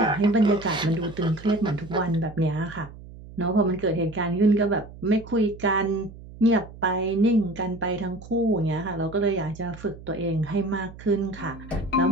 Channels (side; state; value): right; noise; hum, 17 dB below the sound